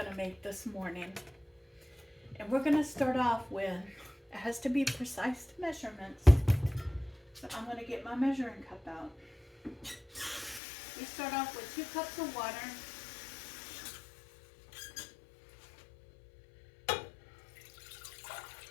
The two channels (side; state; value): right; drops out; at 10.6 s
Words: to make this morning. And we're going to start off with, it has to be precise measurements. So I'm going to get my measuring cup out. We start off with 2 cups of water.